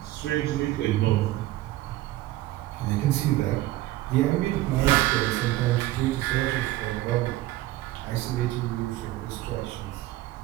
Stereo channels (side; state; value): left; quieter; 16.2 dB